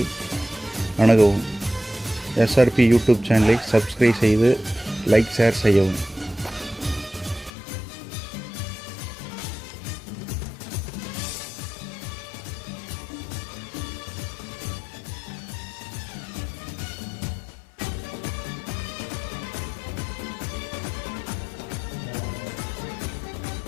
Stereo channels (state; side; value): drops out; right; at 7.5 s